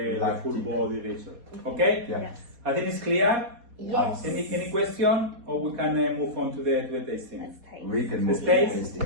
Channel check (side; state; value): left; late; 4.1 ms